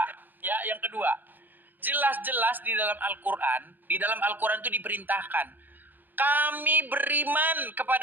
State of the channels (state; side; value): late; left; 0.090 ms